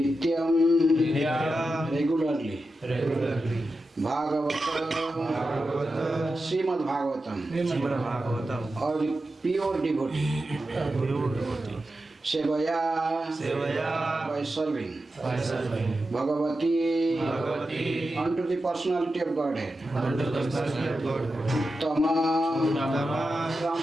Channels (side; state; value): both; normal; correlation 0.91